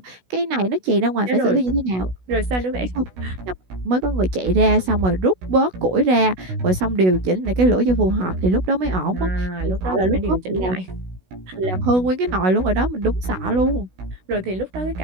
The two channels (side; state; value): left; late; 16 ms